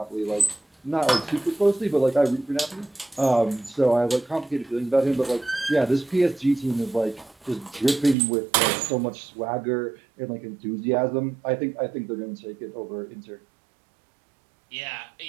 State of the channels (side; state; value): left; drops out; at 8.2 s